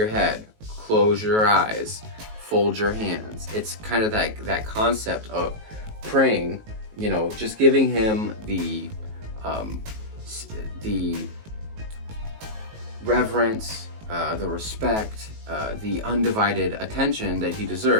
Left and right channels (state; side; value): late; left; 19 ms